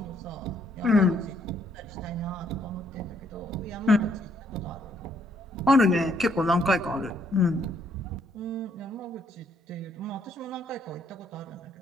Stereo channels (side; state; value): both; normal; correlation 0.70